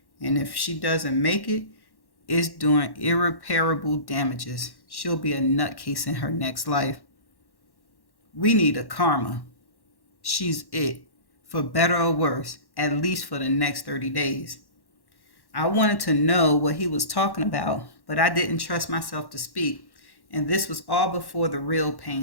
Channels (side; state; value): right; late; 1.1 ms